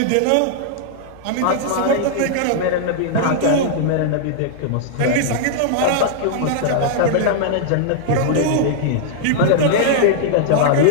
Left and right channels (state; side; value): different; both; correlation -0.01